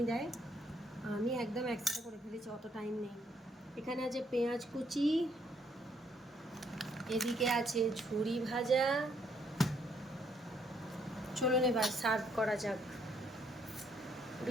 দেয়, আমি একদম একসাথে করে ফেলেছি, অত টাইম নেই। এখানে আছে পেঁয়াজ কুচি, এদিকে আছে ঝুরি ভাজা। চলুন এবার সার্ভ করা যাক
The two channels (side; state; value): both; normal; correlation 0.70